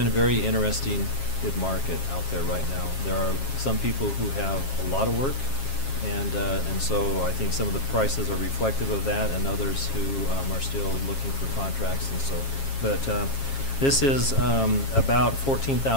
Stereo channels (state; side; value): late; right; 7.4 ms